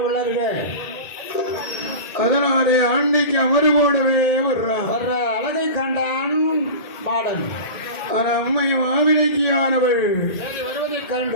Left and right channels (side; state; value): right; late; 2.2 ms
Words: வளர்க. அதனாலே ஆண்டைக்கு அமறு போடவே வர்றார். வர்ற அழகை கண்டான் மாடன். அம்மை மாவிளைக்கியானவள் வருவதை